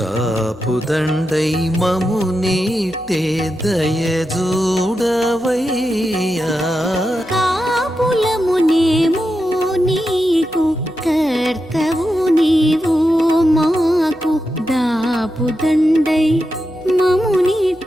మము నీటే దయ చూడవయ్యా. కాపులమునేము నీకు కర్తవు నీవు మాకు దాపుదండై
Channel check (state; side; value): noise; right; hum, 24 dB below the sound